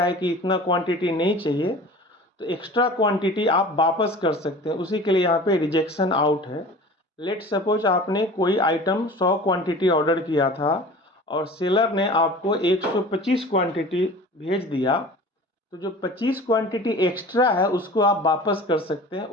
है कि इतना क्वांटिटी नहीं चाहिए, तो एक्स्ट्रा क्वांटिटी आप वापस कर सकते हैं। उसी के लिए यहाँ पे रिजेक्शन आउट है। लेट सपोज आपने कोई आइटम 100 क्वांटिटी ऑर्डर किया था और सेलर ने आपको 125 क्वांटिटी भेज दिया, तो जो 25 क्वांटिटी एक्स्ट्रा है उसको आप वापस कर सकते हैं।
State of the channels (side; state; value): both; normal; correlation 0.40